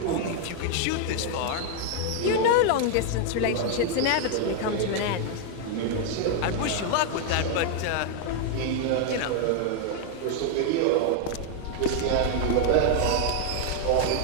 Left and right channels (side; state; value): both; different; correlation 0.00